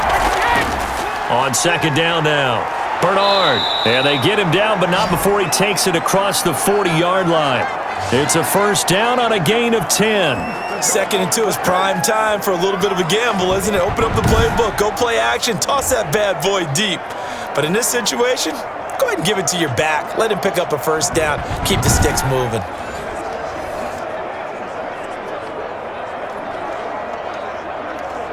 On 2nd down now, Bernard. And they get him down, but not before he takes it across the 40-yard line. It's a 1st down on a gain of 10. 2nd and 2 is prime time for a little bit of a gamble, isn't it? Open up the playbook, go play action, toss that bad boy deep. But in this situation, go ahead and give it to your back. Let him pick up a 1st down. Keep the sticks moving.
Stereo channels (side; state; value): both; identical; correlation 1.00